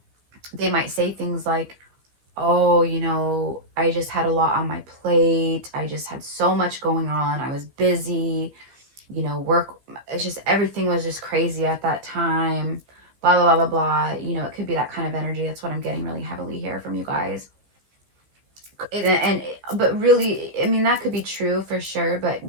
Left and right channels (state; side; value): late; left; 15 ms